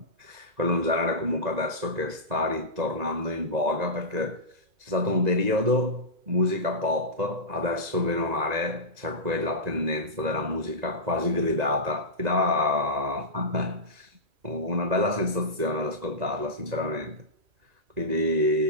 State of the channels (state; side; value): late; left; 2.0 ms